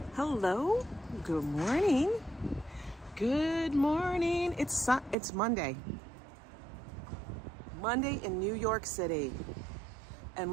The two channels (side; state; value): left; drops out; at 5.2 s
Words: Hello, good morning. Good morning. It's Monday. Monday in New York City. And